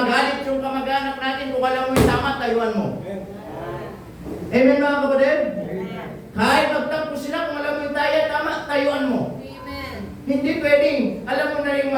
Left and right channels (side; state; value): both; identical; correlation 1.00